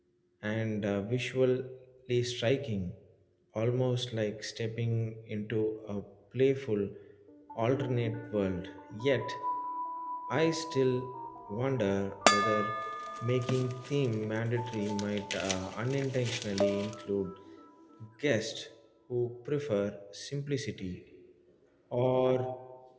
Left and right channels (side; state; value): both; identical; correlation 1.00